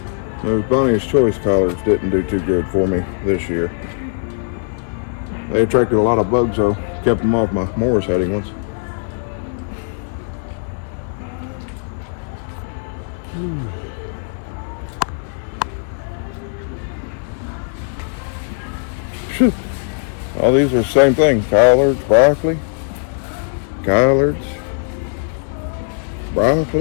Those Bonnie's Choice collards didn't do too good for me this year. They attracted a lot of bugs though. Kept them off my Morris Heading ones. All these are the same thing. Collards, broccoli, collards,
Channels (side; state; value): right; silent; digital silence